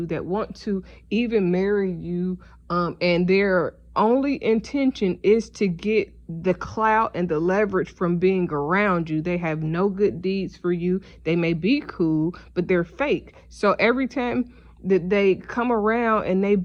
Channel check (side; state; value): both; identical; correlation 1.00